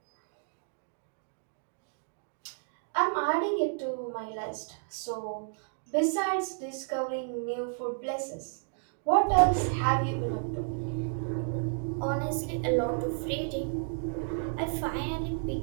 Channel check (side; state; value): left; silent; digital silence